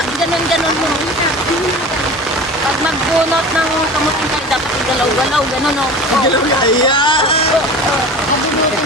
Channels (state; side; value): normal; both; correlation 0.36